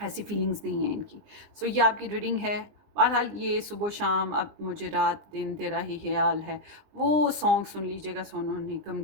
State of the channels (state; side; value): late; left; 20 ms